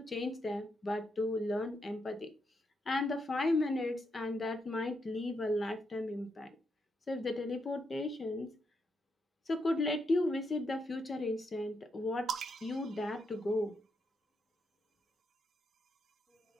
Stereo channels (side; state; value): both; normal; correlation 0.81